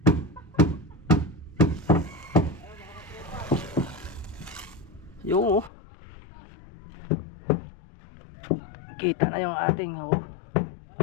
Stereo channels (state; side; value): drops out; right; at 5.7 s